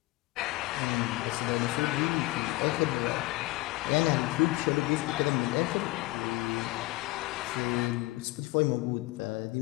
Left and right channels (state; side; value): quieter; right; 20.5 dB